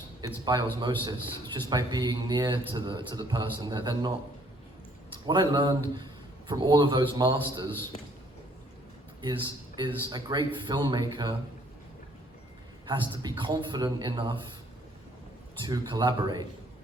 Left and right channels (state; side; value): normal; both; correlation 0.63